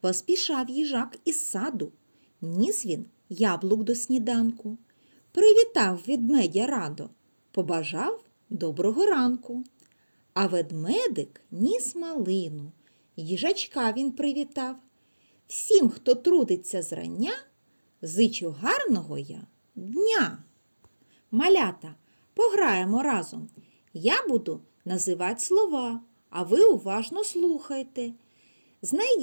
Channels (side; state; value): both; inverted; correlation -1.00